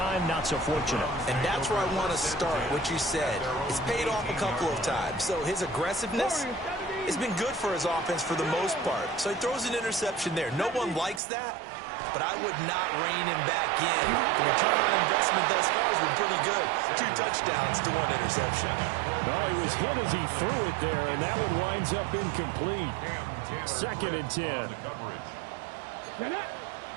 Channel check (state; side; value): drops out; left; at 11.2 s